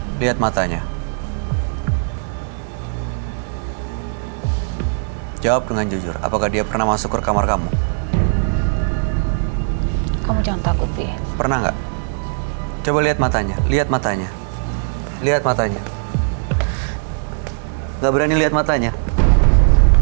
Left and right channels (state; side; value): silent; left; 62 dB below the other